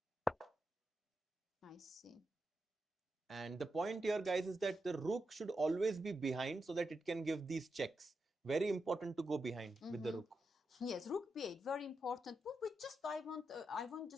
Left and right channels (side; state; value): both; normal; correlation 0.86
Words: I see. And the point here, guys, is that the rook should always be behind so that it can give these checks. Very important to go behind with the rook. Yes, rook b8, very important. But just I want